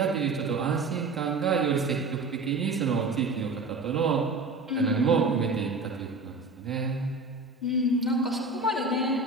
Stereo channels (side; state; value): left; quieter; 3.5 dB